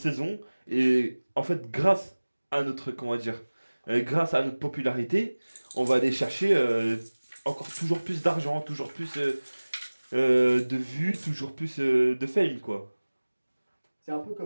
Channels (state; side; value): inverted; both; correlation -1.00